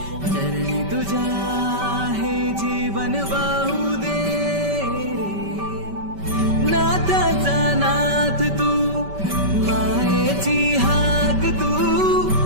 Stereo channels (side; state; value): left; late; 5.2 ms